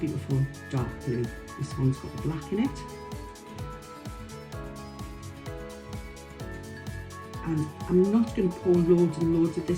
dark blue. This one's got the black in it. And I'm not going to pour loads and loads of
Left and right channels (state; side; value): identical; both; correlation 1.00